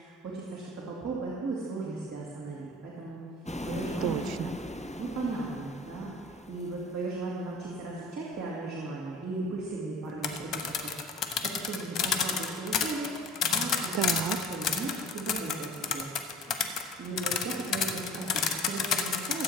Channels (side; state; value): both; normal; correlation 0.44